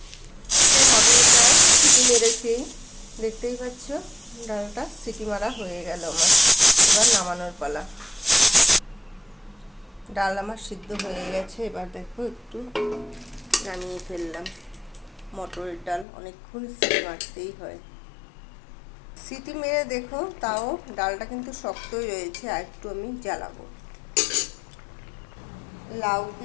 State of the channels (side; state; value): right; drops out; at 16.1 s